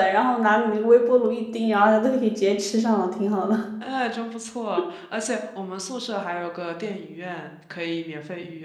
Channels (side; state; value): both; identical; correlation 1.00